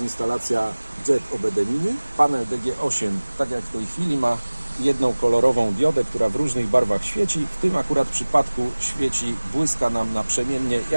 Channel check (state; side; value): inverted; both; correlation -1.00